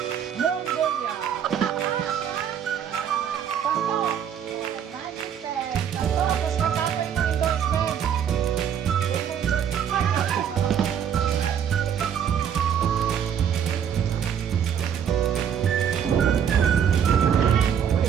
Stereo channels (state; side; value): quieter; left; 8.5 dB